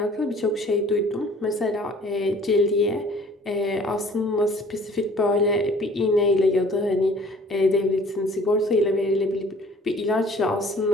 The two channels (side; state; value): both; normal; correlation 0.52